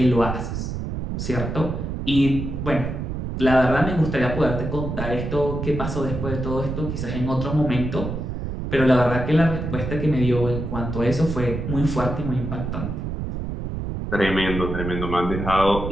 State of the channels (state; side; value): noise; right; rumble, 5 dB below the sound